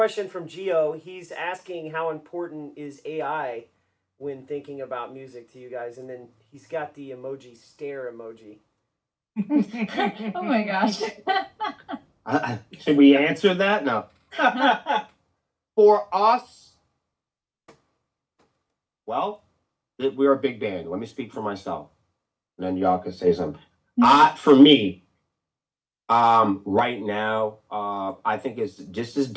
from Gio. He's asking how important is AI when thinking about music to you guys, and then he's got the emoji stare emoji. Oh my gosh. Should we answer that? No. For us, well, we're a big band. Let me speak for myself, and then y'all can say something. For me, right now, I think it's just as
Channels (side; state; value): both; identical; correlation 1.00